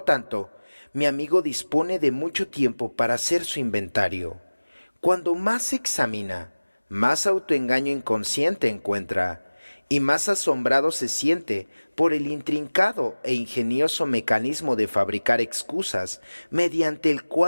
tanto, mi amigo dispone de mucho tiempo para hacer su inventario. Cuando más se examina, más autoengaño inconsciente encuentra y más asombrado se siente por el intrincado e ingenioso mecanismo de fabricar excusas mediante el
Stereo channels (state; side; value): inverted; both; correlation -1.00